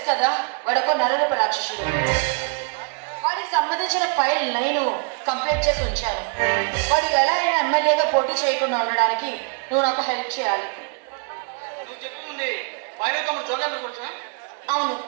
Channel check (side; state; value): left; quieter; 37.7 dB